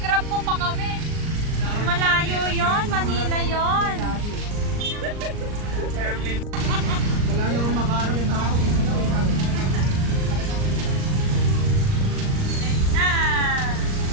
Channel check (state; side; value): late; left; 38 ms